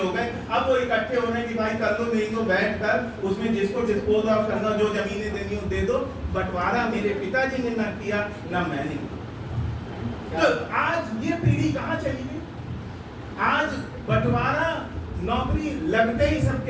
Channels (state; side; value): identical; both; correlation 1.00